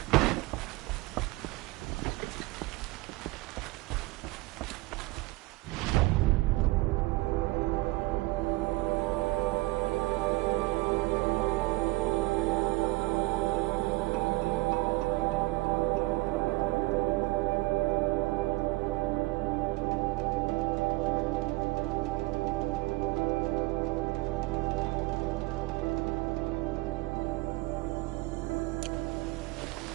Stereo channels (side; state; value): left; quieter; 21.9 dB